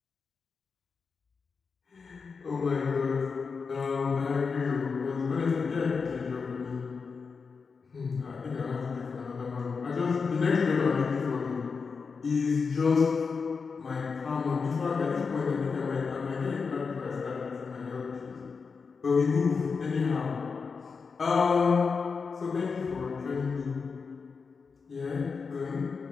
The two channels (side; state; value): right; quieter; 5.1 dB